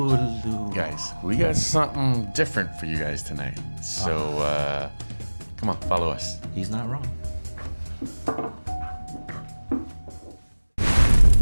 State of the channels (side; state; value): both; inverted; correlation -1.00